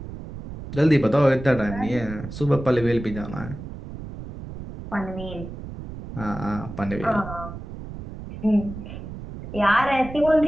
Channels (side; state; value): right; noise; rumble, 11 dB below the sound